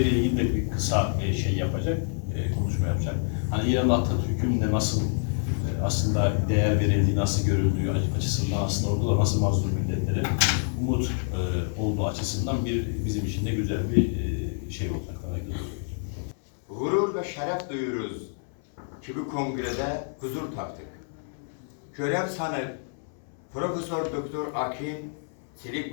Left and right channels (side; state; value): right; silent; 60 dB below the other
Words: ilgili de bir kısa şey yapacak, konuşma yapacak. Hani İran'da Atatürk'ün de nasıl aslında değer verildiği, nasıl görüldüğü açısından aslında orada da nasıl mazlum milletlere umut olduğu açısından bizim için de güzel bir şey olacak. Gurur ve şeref duyuyoruz ki bu kongrede huzur taptık. Görev sanıp Profesör Doktor Akin,